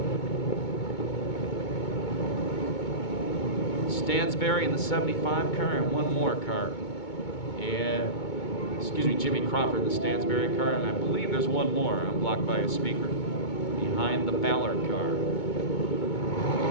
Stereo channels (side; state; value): right; late; 2.2 ms